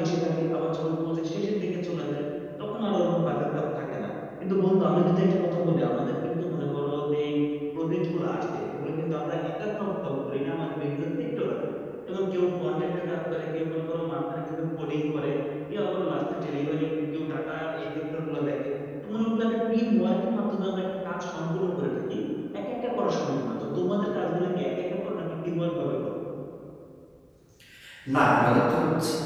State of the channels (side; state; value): both; identical; correlation 1.00